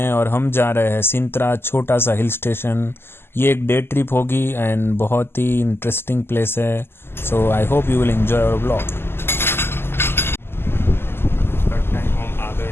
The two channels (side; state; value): right; late; 0.11 ms